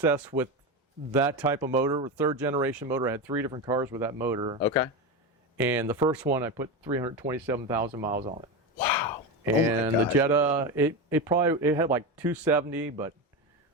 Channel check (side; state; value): both; normal; correlation 0.18